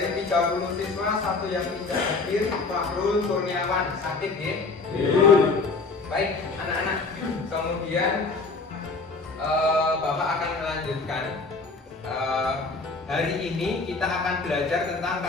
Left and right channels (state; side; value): quieter; right; 3.9 dB